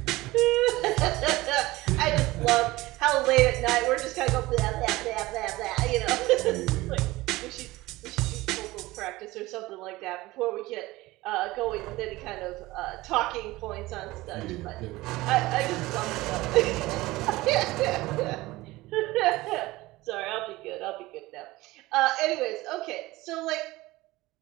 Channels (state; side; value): quieter; left; 19.3 dB